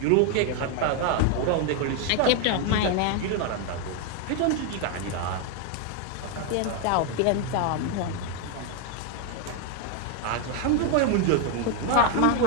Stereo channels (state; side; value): different; both; correlation 0.01